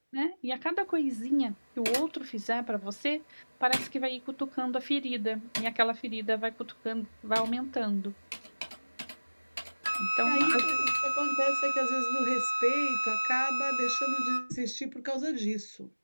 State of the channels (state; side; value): inverted; both; correlation -1.00